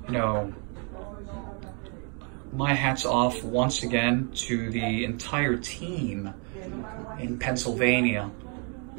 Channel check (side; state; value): left; quieter; 37.6 dB